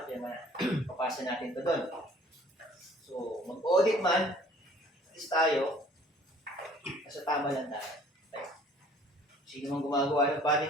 na. Papasa natin ito doon. So mag-audit man, at least tayo, nasa tama lang tayo. Sino mang gumagawa ng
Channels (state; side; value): normal; both; correlation 0.54